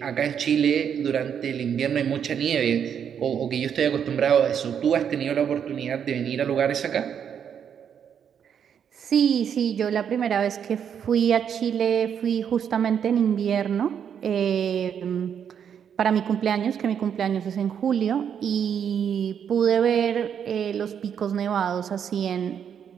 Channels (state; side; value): quieter; left; 8.1 dB